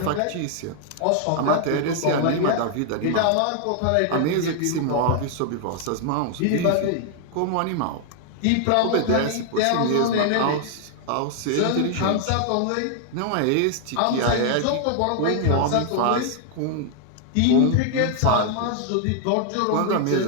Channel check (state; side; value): different; both; correlation 0.00